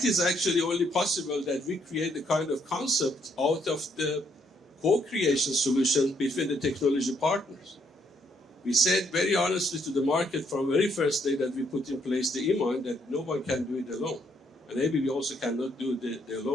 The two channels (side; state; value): both; normal; correlation 0.72